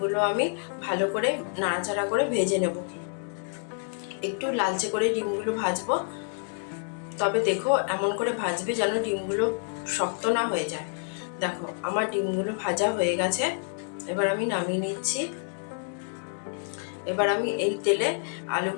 আমি ভালো করে নাড়াচাড়া করে ভেজে নেব। একটু লালচে করে ডিমগুলো ভাজবো। তবে দেখো, এমন করে ভাজবে যেন ডিমগুলো শক্ত না হয়ে যায়। দেখো, আমার ডিমগুলো ভাজা হয়ে গেছে। এবার আমি নামিয়ে নিচ্ছি। এবার আমি এই তেলে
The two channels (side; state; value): right; silent; digital silence